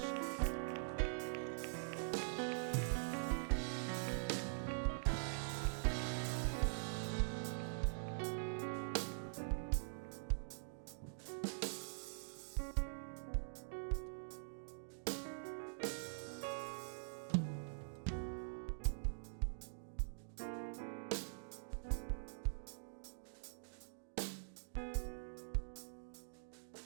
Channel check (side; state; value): left; silent; digital silence